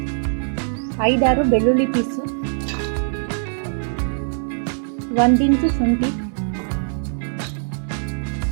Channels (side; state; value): left; silent; digital silence